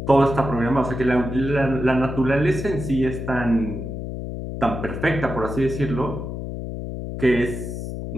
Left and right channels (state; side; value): noise; left; hum, 6 dB below the sound